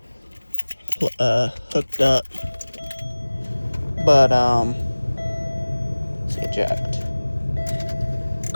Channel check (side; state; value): both; inverted; correlation -1.00